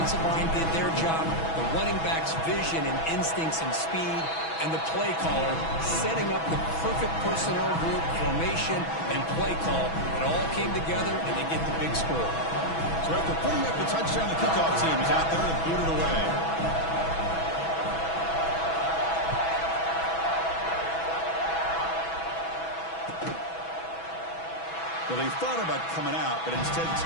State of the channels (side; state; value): right; late; 6.1 ms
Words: line did their job. The running back's vision and instincts and speed. And the play caller setting up the perfect personnel group, formation, and play call. It all came together, and they get the big score. So after putting up the touchdown, the kickoff team is out there to boot it away. Well, they thought about coming out, but instead